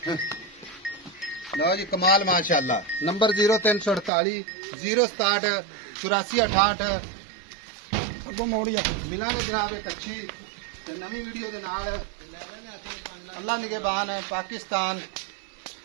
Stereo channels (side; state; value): left; drops out; at 4.1 s